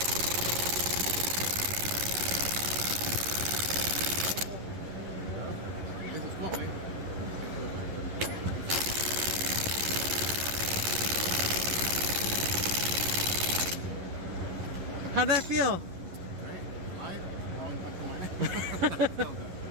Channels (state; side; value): late; left; 11 ms